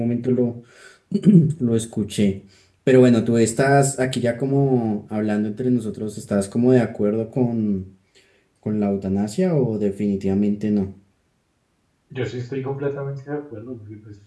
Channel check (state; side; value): identical; both; correlation 1.00